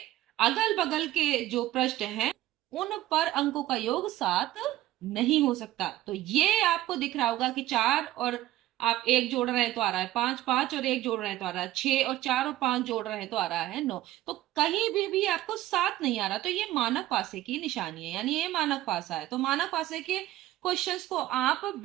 अगल बगल के जो पृष्ठ हैं उन पर अंकों का योग 7 नहीं हो सकता। तो ये आपको दिख रहा होगा कि 4 और आप 1 जोड़ रहे हैं तो आ रहा है 5, 5 और 1 जोड़ रहे हैं तो आ रहा है 6, और 4 और 5 जोड़ रहे हैं तो आ रहा है 9। तो कहीं भी आपको 7 नहीं आ रहा, तो ये मानक पासे की निशानी है, यानी ये मानक पासा है। तो मानक पासे के क्वेश्चंस को आप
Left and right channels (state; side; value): quieter; left; 15.1 dB